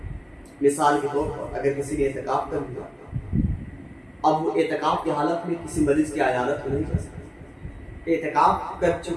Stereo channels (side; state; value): both; identical; correlation 1.00